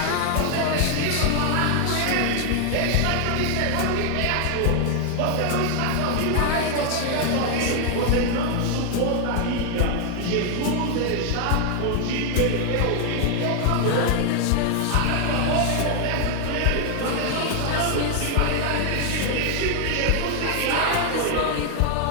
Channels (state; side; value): different; both; correlation 0.00